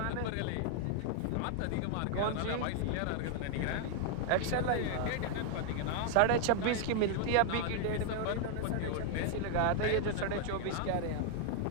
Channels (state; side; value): different; both; correlation 0.00